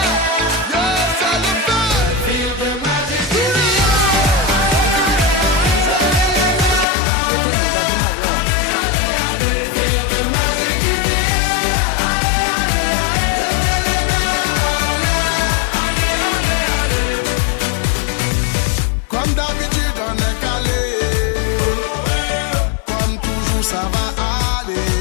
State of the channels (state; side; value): drops out; right; at 6.9 s